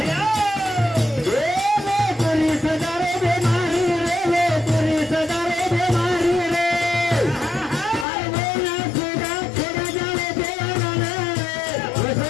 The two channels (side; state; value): right; drops out; at 8.1 s